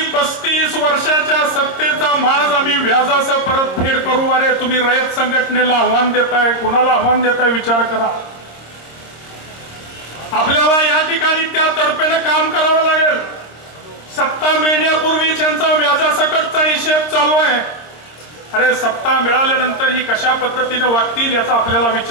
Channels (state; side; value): late; right; 26 ms